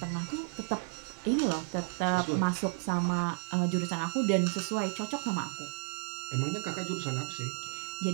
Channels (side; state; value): left; silent; 56 dB below the other